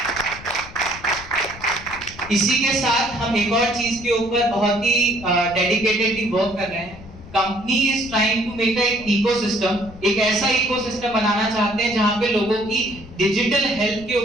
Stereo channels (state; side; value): noise; left; rumble, 17 dB below the sound